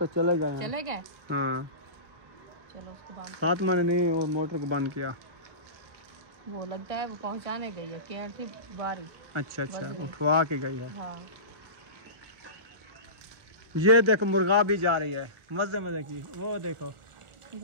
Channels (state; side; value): late; left; 1.3 ms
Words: चले गए। चले गए। हाँ, चलो उसको बंद। फातिमा ने नहीं वो मोटर को बंद किया। वो लगता है वो पहुंचाने गई है, क्या थी बारी। अच्छा, उठवा के गई है। हाँ। ये देखो मुर्गा भी जा रही है, मजे की, वो देखो